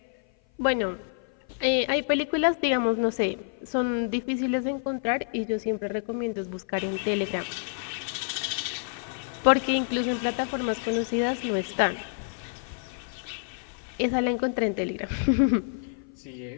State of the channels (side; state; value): right; silent; 55 dB below the other